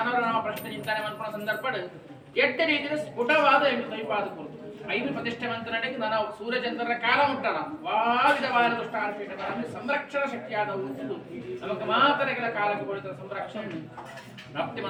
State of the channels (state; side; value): identical; both; correlation 1.00